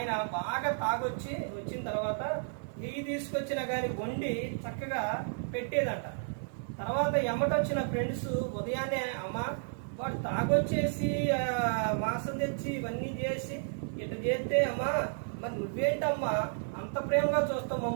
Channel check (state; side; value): silent; left; 56 dB below the other